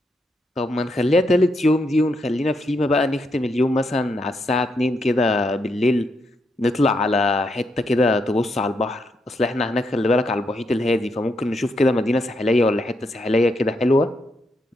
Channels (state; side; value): normal; both; correlation 0.79